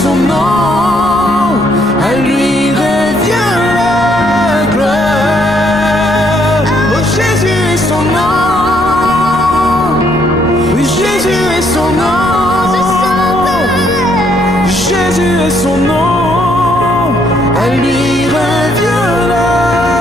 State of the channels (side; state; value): left; noise; rumble, 20 dB below the sound